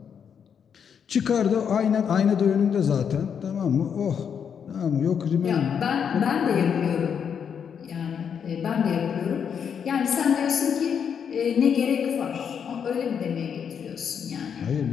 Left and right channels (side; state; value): right; quieter; 7.4 dB